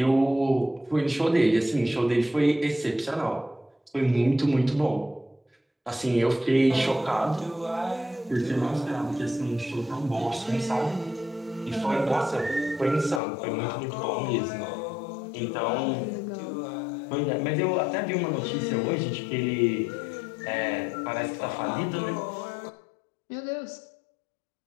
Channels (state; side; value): drops out; right; at 13.2 s